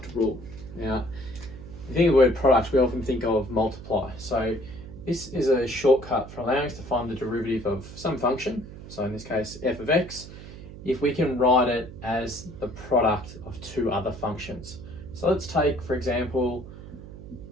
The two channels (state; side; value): noise; right; hum, 14 dB below the sound